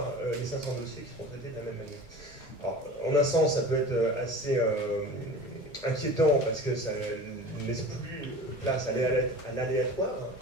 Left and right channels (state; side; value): normal; both; correlation 0.37